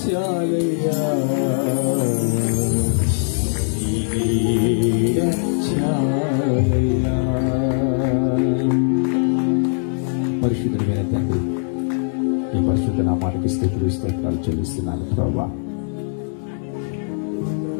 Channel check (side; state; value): right; silent; 65 dB below the other